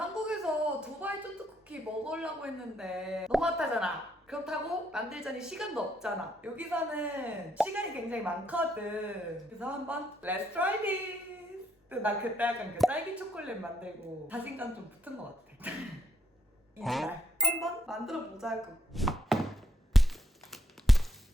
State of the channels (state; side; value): normal; both; correlation 0.73